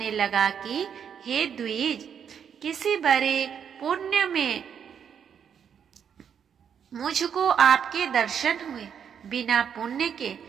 लगा कि हे द्विज, किसी बड़े पुण्य में मुझको आपके दर्शन हुए। बिना पुण्य के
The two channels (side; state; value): left; quieter; 7.9 dB